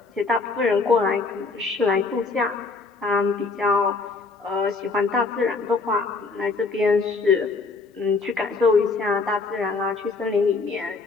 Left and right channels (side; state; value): right; quieter; 4.1 dB